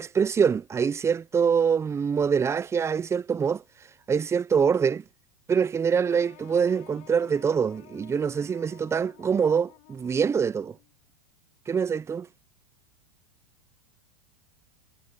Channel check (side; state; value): left; quieter; 6.3 dB